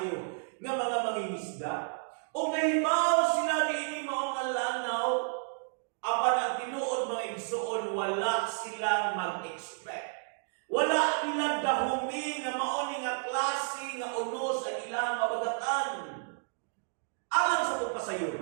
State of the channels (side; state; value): left; silent; digital silence